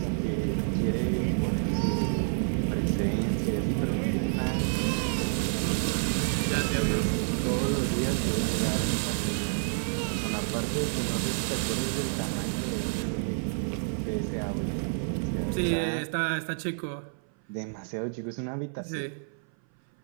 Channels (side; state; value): left; silent; 57 dB below the other